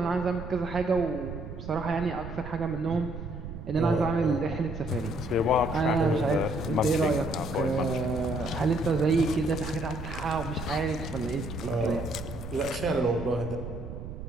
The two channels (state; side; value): noise; right; rumble, 9 dB below the sound